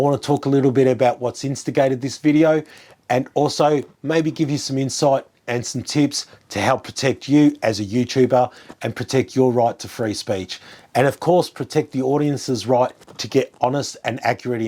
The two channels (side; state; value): both; identical; correlation 1.00